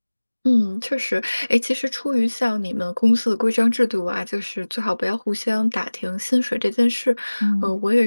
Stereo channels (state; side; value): inverted; both; correlation -1.00